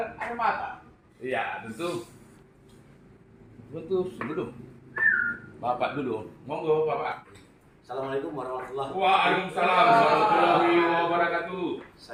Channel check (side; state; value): both; identical; correlation 1.00